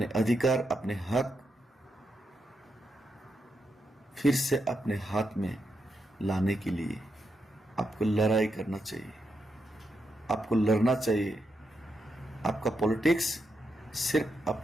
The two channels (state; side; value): normal; both; correlation 0.83